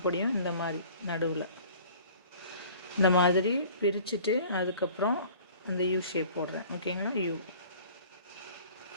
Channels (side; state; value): both; inverted; correlation -0.48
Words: இந்த மாதிரி நடுவில் இந்த மாதிரி பிரிச்சுட்டு அதுக்கப்புறம் அந்த யூ ஷேப் போடுறேன். ஓகேங்களா?